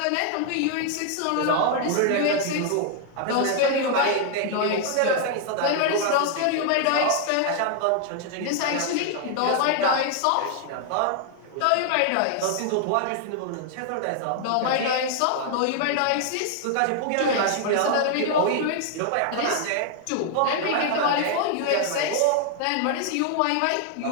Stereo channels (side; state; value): both; different; correlation 0.00